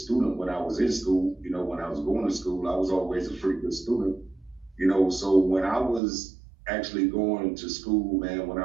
when I was in school. When I was going to school, I was always a pretty good student, so when I was actually going to school, man, when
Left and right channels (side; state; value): left; drops out; at 6.0 s